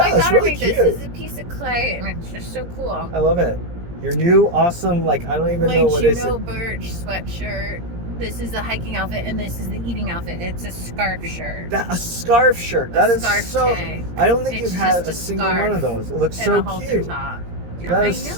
My it's daughter really made this. cute. This is a piece of clay, and it's just so cool. I love it. Your new awesome, like, I don't even My know what is Juno it. Birch sweatshirt. This is the hiking outfit, and this is the eating outfit. It's a scarf shirt. A scarf shirt. That is scarf so. tank. I don't think It's you've had just a a single scarf one of those. It looks And so a halter cute. top. That I is know,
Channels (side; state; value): left; late; 17 ms